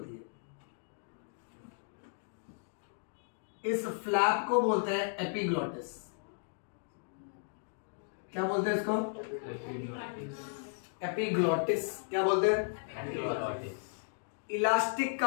है, इस फ्लैप को बोलते हैं एपिग्लॉटिस। क्या बोलते हैं इसको? एपिग्लॉटिस। क्या बोलते हैं? एपिग्लॉटिस। इलास्टिक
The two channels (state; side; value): silent; right; digital silence